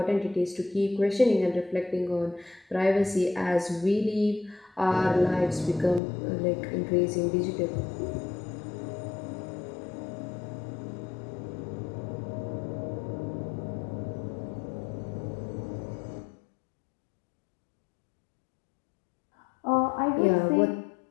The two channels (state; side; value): drops out; right; at 6.0 s